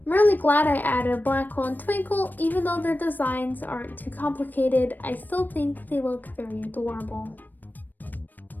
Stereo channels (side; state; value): right; late; 0.089 ms